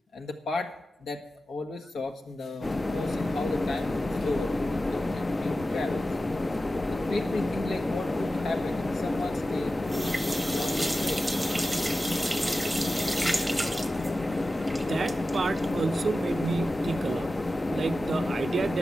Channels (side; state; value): both; normal; correlation 0.93